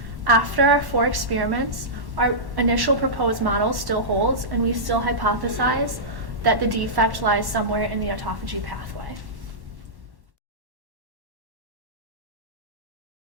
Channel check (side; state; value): left; late; 1.1 ms